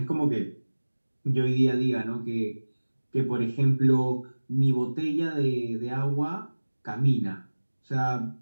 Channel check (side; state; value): both; inverted; correlation -1.00